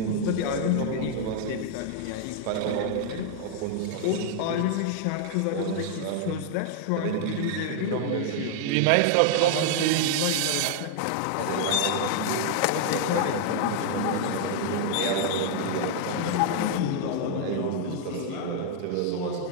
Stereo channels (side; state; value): both; different; correlation 0.00